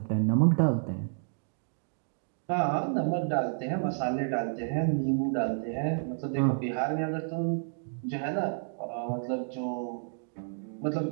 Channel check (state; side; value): silent; left; digital silence